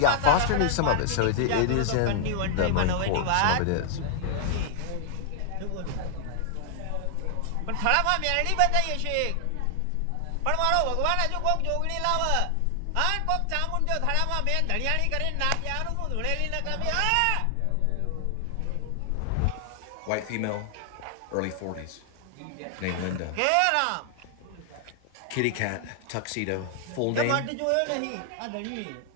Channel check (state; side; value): different; both; correlation 0.00